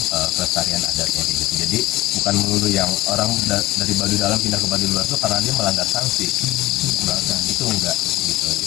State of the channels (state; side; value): quieter; right; 17.7 dB